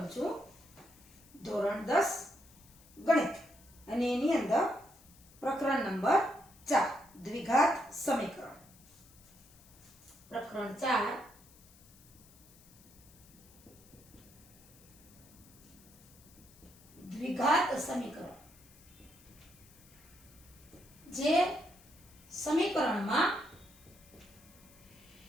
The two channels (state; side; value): noise; left; hiss, 24 dB below the sound